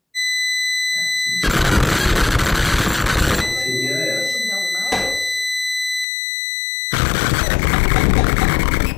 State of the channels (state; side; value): drops out; right; at 6.1 s